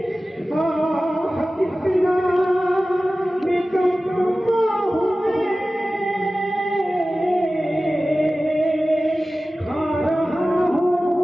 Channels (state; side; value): normal; both; correlation 0.96